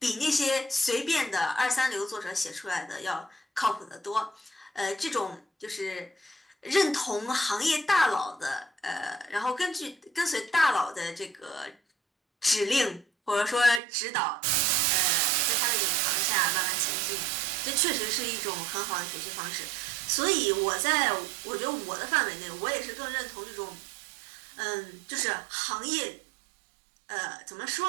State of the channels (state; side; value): drops out; left; at 13.8 s